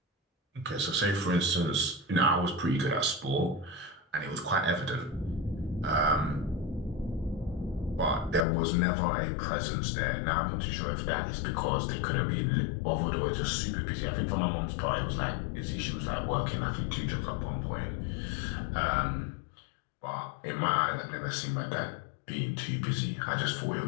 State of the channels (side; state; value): right; drops out; at 8.5 s